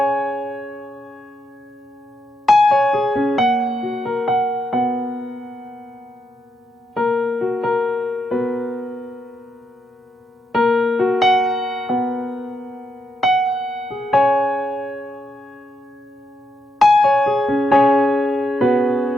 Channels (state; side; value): normal; both; correlation 0.82